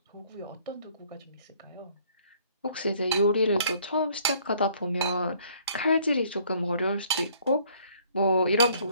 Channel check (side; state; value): both; inverted; correlation -0.60